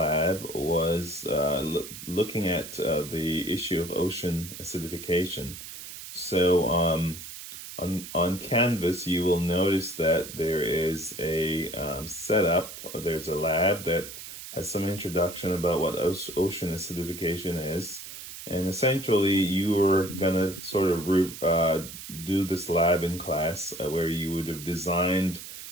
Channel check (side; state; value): right; noise; hiss, 11 dB below the sound